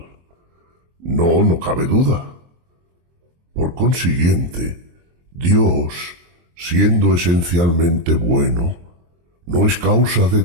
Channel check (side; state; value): left; late; 23 ms